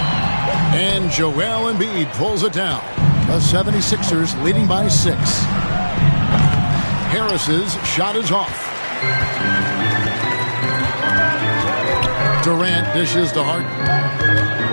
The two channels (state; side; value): inverted; both; correlation -1.00